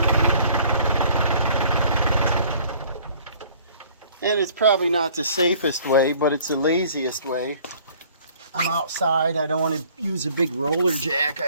And it's probably not the safest way, but it's the laziest way. I'm outside. I don't want to use a big roller jack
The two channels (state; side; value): inverted; both; correlation -0.55